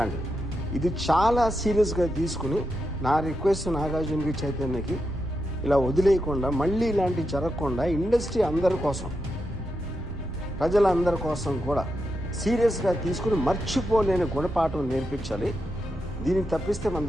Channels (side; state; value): both; normal; correlation 0.85